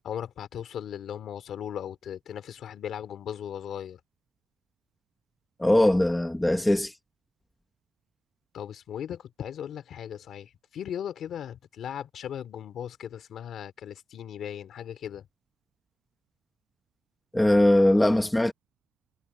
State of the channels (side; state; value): both; normal; correlation 0.98